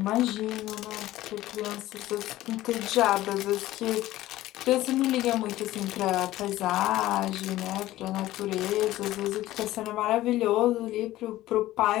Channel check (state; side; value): quieter; right; 15.7 dB